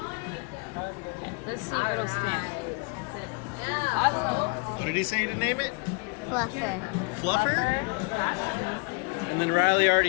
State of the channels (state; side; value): quieter; right; 32.1 dB